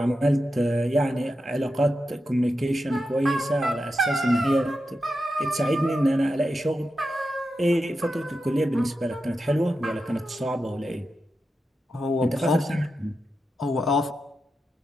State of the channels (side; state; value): both; normal; correlation 0.89